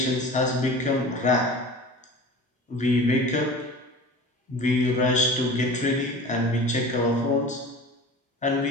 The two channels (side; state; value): both; normal; correlation 0.38